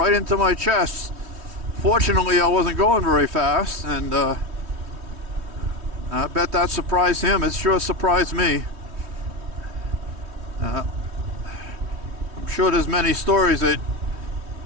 into my chest. Fortunately, I wasn't going very fast, and I bet that surprised him. It sure surprised me. I'm sure there's many stories that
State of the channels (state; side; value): late; left; 3.2 ms